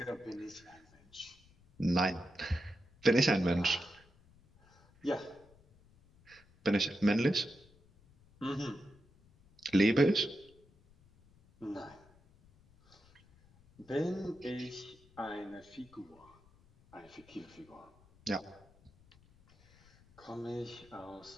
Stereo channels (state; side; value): noise; left; rumble, 28 dB below the sound